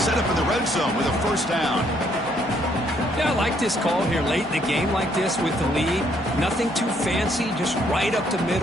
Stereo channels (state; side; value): normal; both; correlation 0.69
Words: up in the red zone with a first down. Yeah, I like this call here late in the game like this with the lead. Nothing too fancy, just right up the